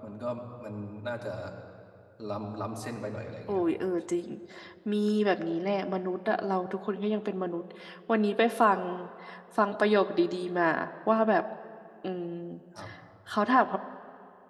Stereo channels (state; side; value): identical; both; correlation 1.00